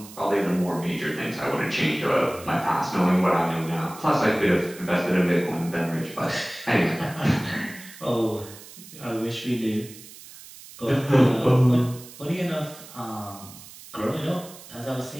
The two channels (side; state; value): right; noise; hiss, 18 dB below the sound